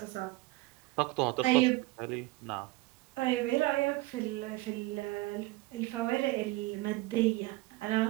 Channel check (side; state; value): left; quieter; 20.7 dB